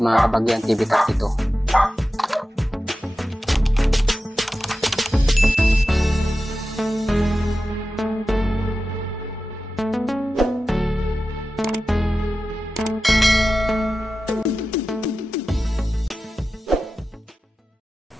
mga Kabagyan TV 32.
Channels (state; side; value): normal; both; correlation 0.93